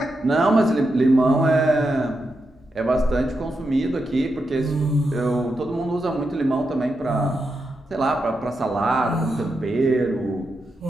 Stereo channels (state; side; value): normal; both; correlation 0.86